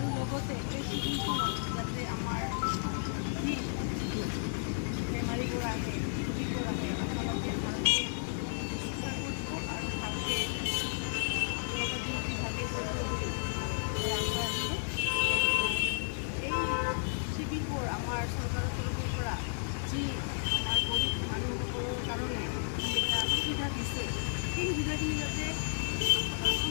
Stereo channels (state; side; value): silent; right; digital silence